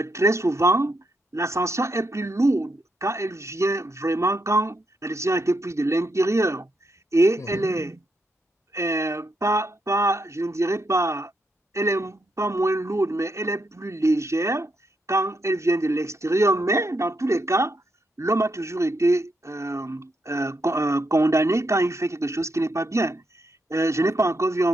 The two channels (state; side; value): normal; both; correlation 0.80